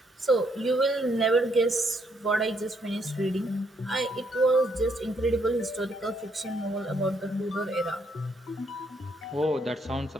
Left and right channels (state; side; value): normal; both; correlation 0.72